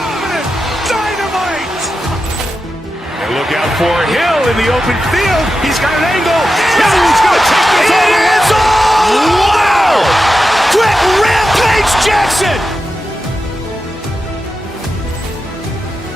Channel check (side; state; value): both; normal; correlation 0.90